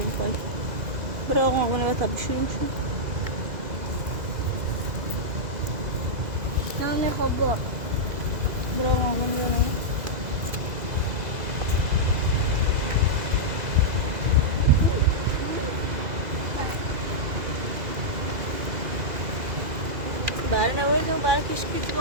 برای آقا آقا نباید تبی شروع شد Nane hobo. برای آقا آقا نباید برای نباید برای کشکی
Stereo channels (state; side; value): late; left; 2.4 ms